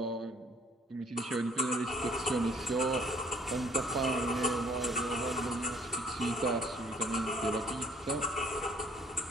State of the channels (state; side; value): normal; both; correlation 0.61